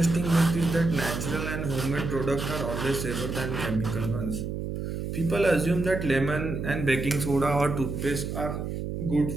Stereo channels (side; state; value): right; noise; hum, 4 dB below the sound